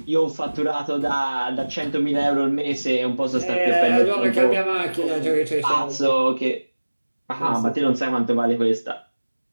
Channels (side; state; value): both; inverted; correlation -1.00